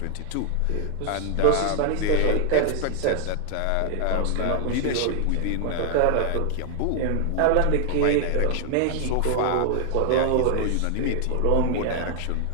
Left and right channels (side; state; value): both; different; correlation 0.00